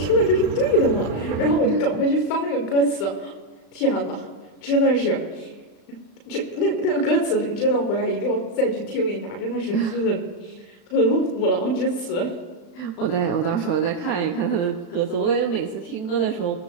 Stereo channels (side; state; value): right; late; 35 ms